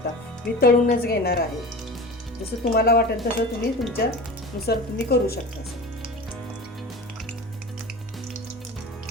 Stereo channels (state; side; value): normal; both; correlation 0.34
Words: मी तळूनच घेणार आहे. जसं तुम्हाला वाटेल तसं तुम्ही तुमच्यानुसार तुम्ही करू शकता.